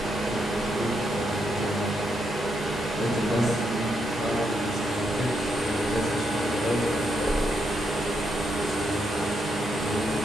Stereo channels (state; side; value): normal; both; correlation 0.79